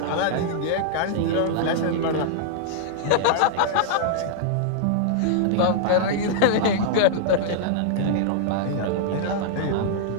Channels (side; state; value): both; different; correlation -0.02